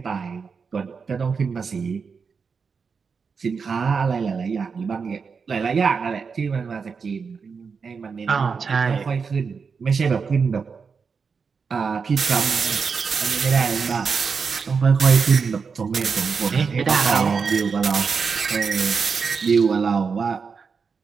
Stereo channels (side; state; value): left; quieter; 5.5 dB